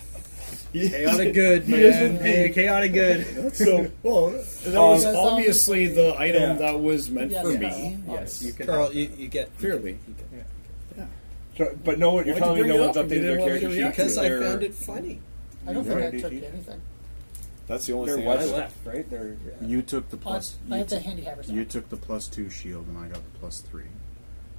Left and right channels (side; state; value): both; inverted; correlation -1.00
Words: Chaotic good, He is man. indeed. Hey, chaotic good. So, well, that was Um, obviously the item yeah. that was meant Yes, for yes. me. Yes, you can. Carl, you get Clearly. So, but no one, you're Why'd you telling me bring no it one's up? You updated didn't their want me to character sheet? react because I They're- found it funny. I don't think Right. I took anything. That's the only They're thing what's I got. left, right? They're You took the I plus. I You, had the took, handy haver stuff. you took the +2 shield, and I got the +3.